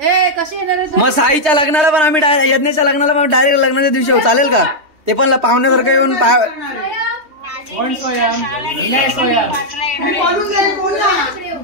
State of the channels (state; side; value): late; left; 3.2 ms